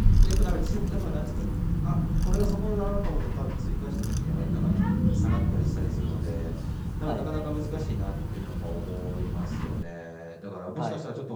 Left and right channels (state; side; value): identical; both; correlation 1.00